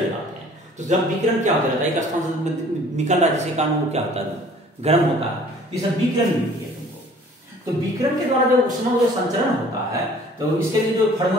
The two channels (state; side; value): normal; both; correlation 0.52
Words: हैं तो जब विकिरण क्या होता रहता है एक स्थान से निकल रहा है जिसके कारण वो क्या होता है गर्म होता है, ये सब विकिरण मिलती है तुमको। तो विकिरण के द्वारा जो उष्मा जो संचरण होता है तो इसके लिए जो